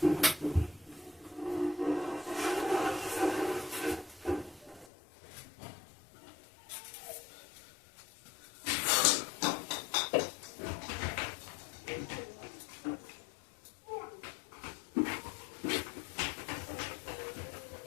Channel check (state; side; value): drops out; right; at 4.9 s